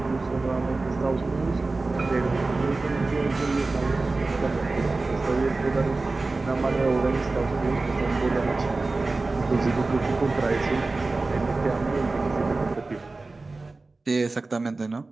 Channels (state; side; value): quieter; left; 3.5 dB